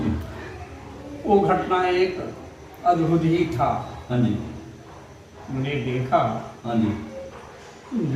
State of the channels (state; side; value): identical; both; correlation 1.00